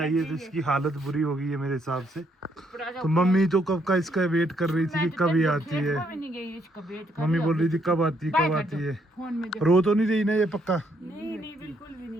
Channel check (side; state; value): both; normal; correlation 0.72